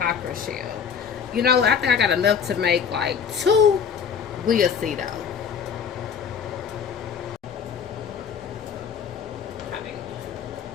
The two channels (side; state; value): right; quieter; 7.2 dB